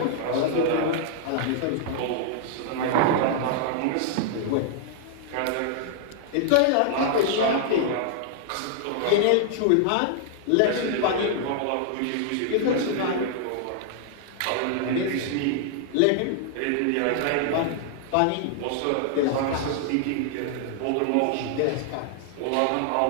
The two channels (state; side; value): different; both; correlation -0.01